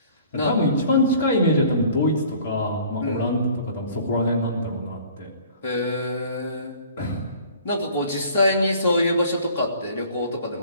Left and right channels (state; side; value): inverted; both; correlation -0.51